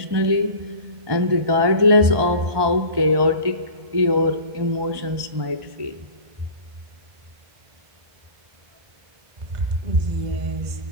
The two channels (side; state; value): left; late; 1.2 ms